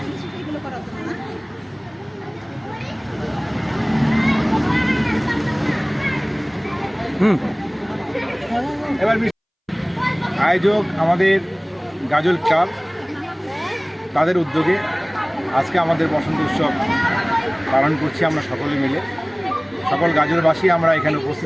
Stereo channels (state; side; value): identical; both; correlation 1.00